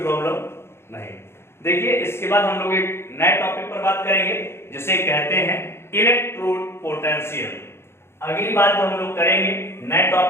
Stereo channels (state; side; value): late; right; 0.12 ms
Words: प्रॉब्लम नहीं। देखिए इसके बाद हम लोग एक नए टॉपिक पर बात करेंगे जिसे कहते हैं इलेक्ट्रोड पोटेंशियल। अगली बात हम लोग करेंगे नए